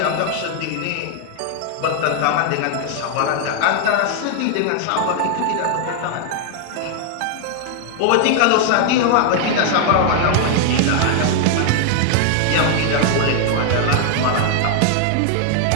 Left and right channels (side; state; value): both; different; correlation 0.00